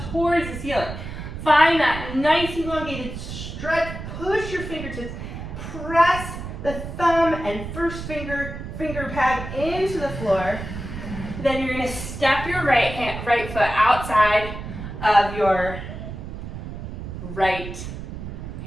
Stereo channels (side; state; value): right; noise; rumble, 8 dB below the sound